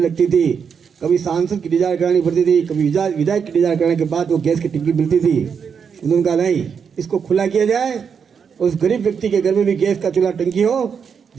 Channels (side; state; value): left; quieter; 6.7 dB